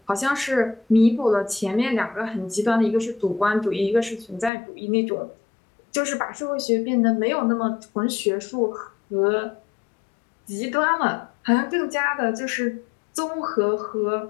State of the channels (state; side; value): drops out; right; at 4.5 s